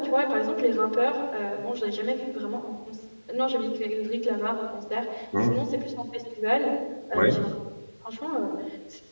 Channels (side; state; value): both; inverted; correlation -1.00